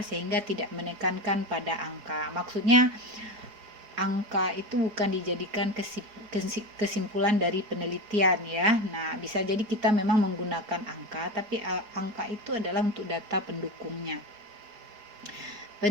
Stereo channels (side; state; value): left; late; 4.8 ms